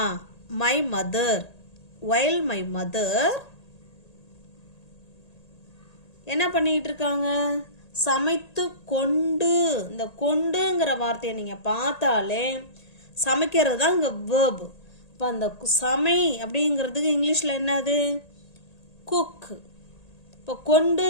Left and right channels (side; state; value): right; late; 1.8 ms